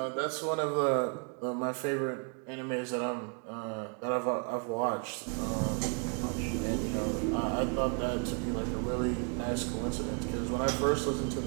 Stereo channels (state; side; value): quieter; left; 38.0 dB